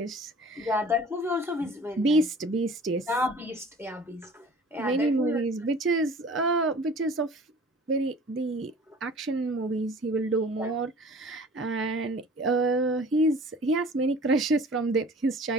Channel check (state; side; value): normal; both; correlation 0.46